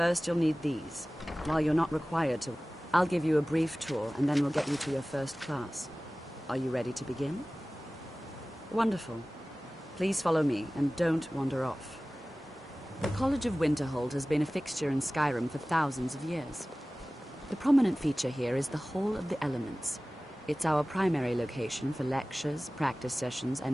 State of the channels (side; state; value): both; normal; correlation 0.97